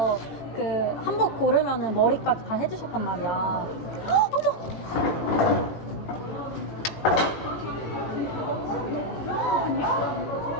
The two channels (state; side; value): late; right; 18 ms